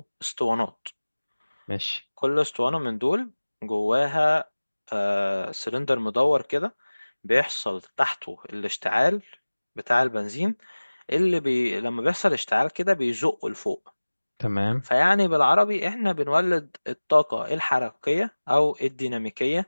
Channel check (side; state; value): both; inverted; correlation -1.00